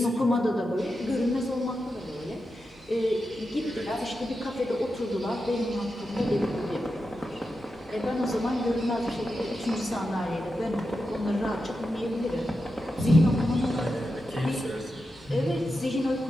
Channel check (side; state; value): both; normal; correlation 0.89